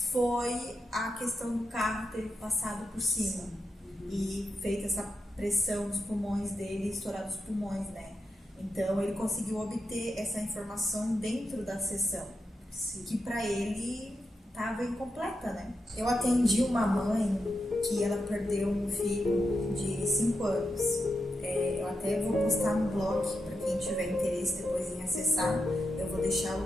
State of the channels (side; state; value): both; normal; correlation 0.87